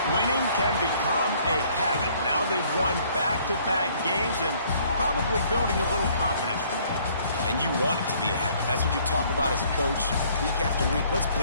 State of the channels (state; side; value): inverted; both; correlation -0.60